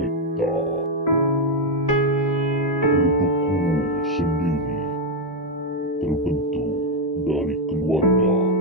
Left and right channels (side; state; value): both; normal; correlation 0.03